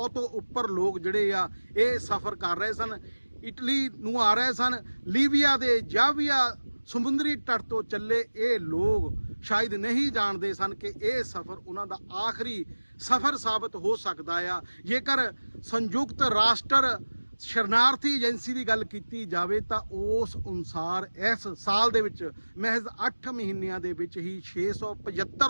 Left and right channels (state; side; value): inverted; both; correlation -1.00